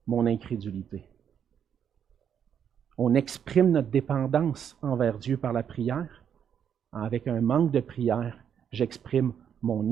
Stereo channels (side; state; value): left; quieter; 8.3 dB